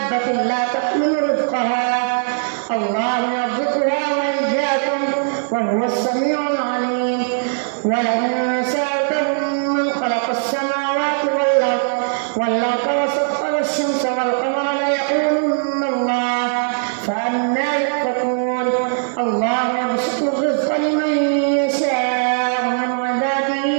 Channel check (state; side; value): silent; left; digital silence